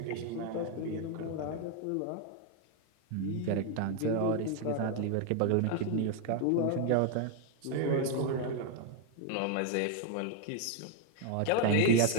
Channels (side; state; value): both; different; correlation 0.01